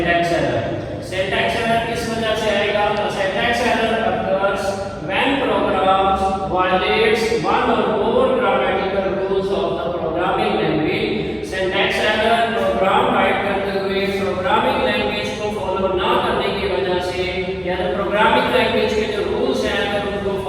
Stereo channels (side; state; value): both; identical; correlation 1.00